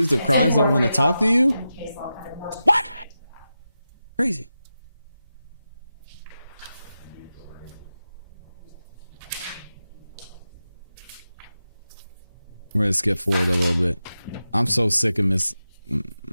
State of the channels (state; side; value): inverted; both; correlation -0.91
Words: of crimes don't want to talk to you? What? Crazy. We're gonna skip forward a little bit. I'm so sick of Miss.